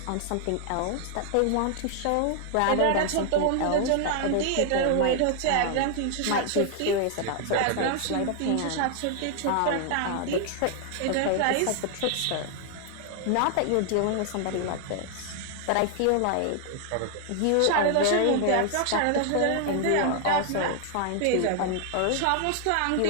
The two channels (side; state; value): both; different; correlation 0.00